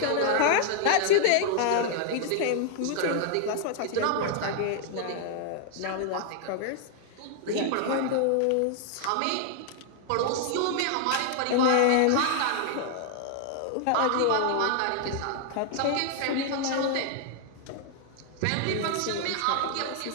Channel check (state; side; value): different; both; correlation 0.00